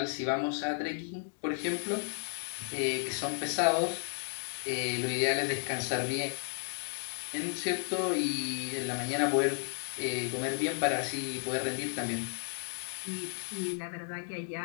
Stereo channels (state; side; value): silent; right; 55 dB below the other